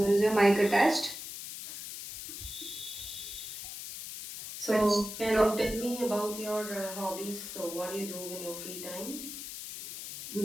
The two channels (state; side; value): noise; left; hiss, 9 dB below the sound